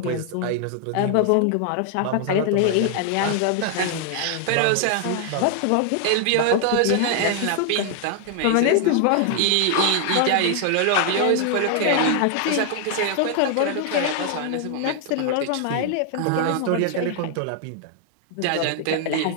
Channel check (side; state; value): both; different; correlation 0.00